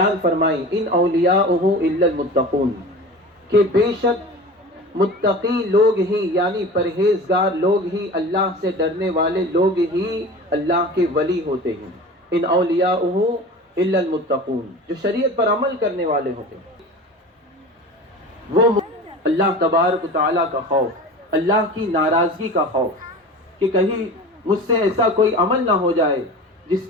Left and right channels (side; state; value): both; normal; correlation 0.35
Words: فرمائی، ان اولیاءہ الا المتقون، کہ بے شک متقی لوگ ہی یعنی پرہیزگار لوگ ہی، اللہ سے ڈرنے والے لوگ ہی اللہ کے ولی ہوتے ہیں۔ ان اولیاءہ الا المتقون، جو شریعت پر عمل کرنے والے ہوتے ہیں، وہ اللہ تبارک و تعالیٰ کا خوف، اللہ کی ناراضگی کا خوف، کہ کہیں مجھ سے ایسا کوئی عمل نہ ہو جائے جس